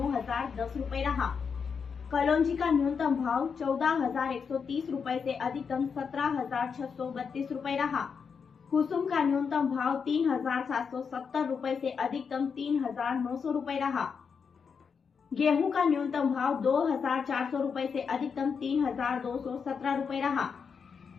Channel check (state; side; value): quieter; right; 6.1 dB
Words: रुपए रहा। कलौंजी का न्यूनतम भाव 14,130 रुपए से अधिकतम 17,632 रुपए रहा। कुसुम का न्यूनतम भाव 3,770 रुपए से अधिकतम 3,900 रुपए रहा। गेहूं का न्यूनतम भाव 2,400 रुपए से अधिकतम 3,217 रुपए रहा।